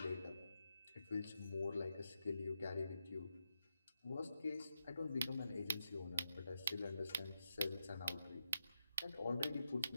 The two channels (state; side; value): inverted; both; correlation -0.86